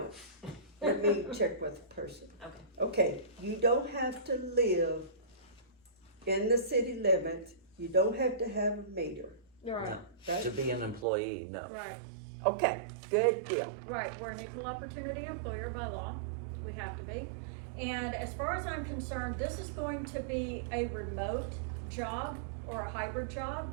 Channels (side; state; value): left; drops out; at 11.1 s